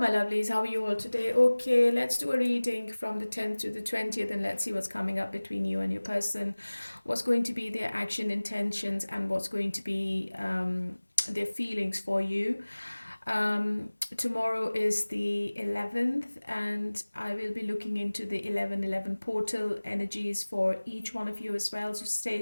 lovelies. How are you all today? Okay, let's do a reading from the 10th to the 20th and let's see what's coming up between you and your person. What's going to be their action intentions and what's going to be their feelings for you. Tomorrow is the 11th, and I will be looking into the 11/11 portal energies for each one of you as well, so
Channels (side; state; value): both; inverted; correlation -1.00